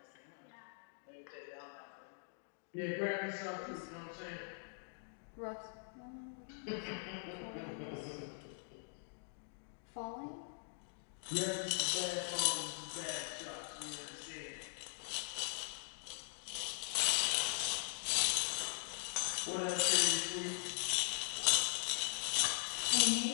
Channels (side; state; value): right; silent; digital silence